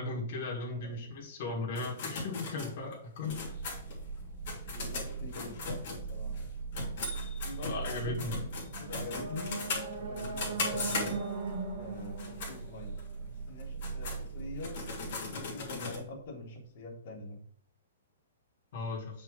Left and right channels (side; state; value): both; inverted; correlation -0.38